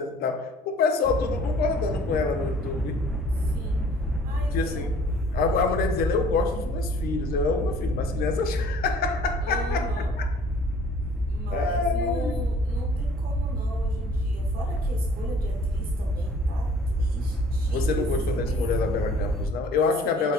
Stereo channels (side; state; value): both; normal; correlation 0.53